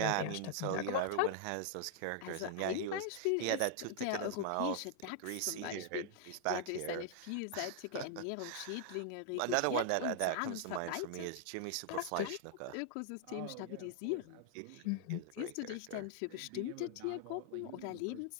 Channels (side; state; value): both; different; correlation -0.01